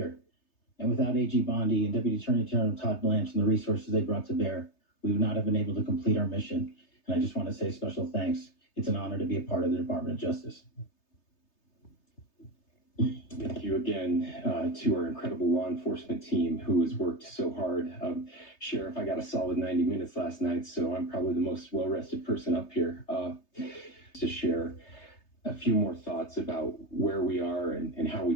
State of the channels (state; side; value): late; right; 3.3 ms